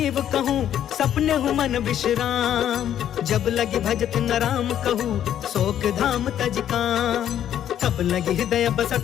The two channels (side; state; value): right; quieter; 10.5 dB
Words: कहूँ, सपने हूँ मन विश्राम। जब लगी भजत न राम कहूँ, शोक धाम तज काम। तब लगी हृदय